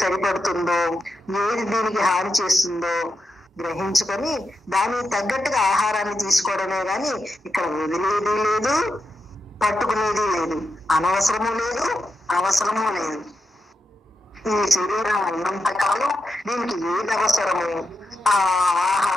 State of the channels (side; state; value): both; normal; correlation 0.87